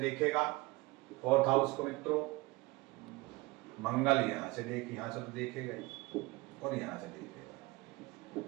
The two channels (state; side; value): quieter; left; 21.9 dB